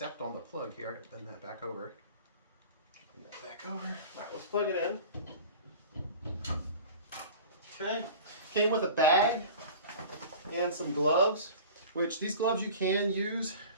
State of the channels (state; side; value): inverted; both; correlation -0.39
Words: on the plug here. I got to bend that back over. Bend that back over. All right, let's plug it in. Okay. Came with a bag and some gloves, which these gloves you can use.